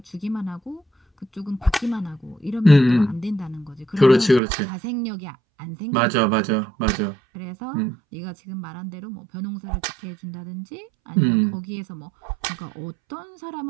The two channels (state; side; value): drops out; left; at 4.4 s